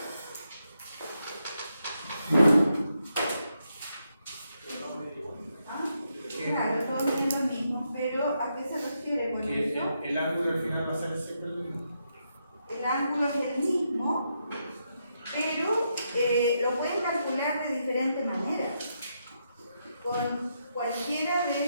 Claro, todo es lo mismo, pero ¿a qué se refiere con eso? El ángulo al final va a ser siempre el mismo. El ángulo es el mismo, pero lo pueden calcular de diferentes maneras. Con cualquiera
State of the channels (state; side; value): inverted; both; correlation -0.81